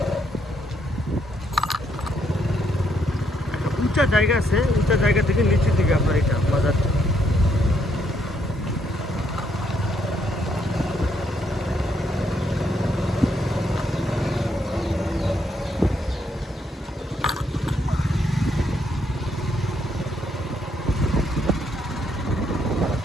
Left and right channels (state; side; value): normal; both; correlation 0.74